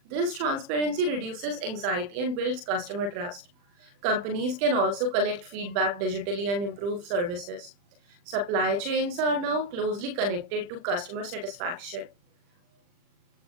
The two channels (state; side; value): late; left; 40 ms